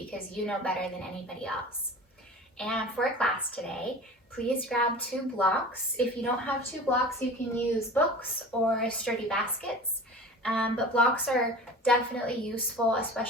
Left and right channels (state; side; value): normal; both; correlation 0.38